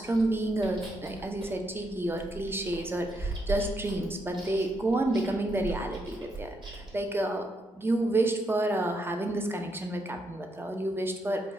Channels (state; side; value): normal; both; correlation 0.78